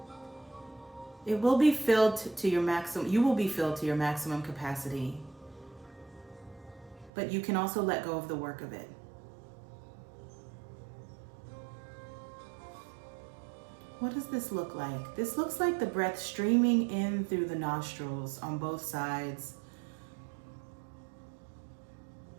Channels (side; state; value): left; drops out; at 7.1 s